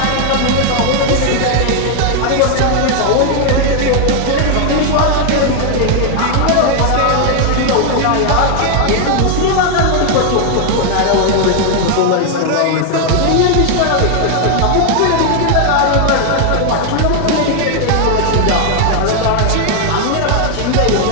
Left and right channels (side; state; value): both; different; correlation 0.00